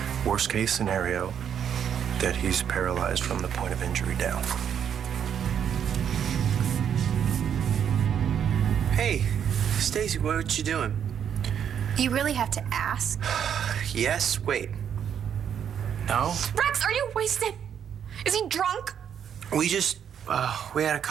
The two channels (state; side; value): quieter; left; 8.5 dB